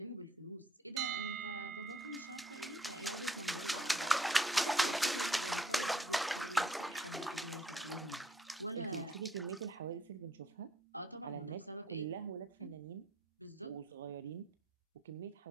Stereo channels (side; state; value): both; normal; correlation 0.65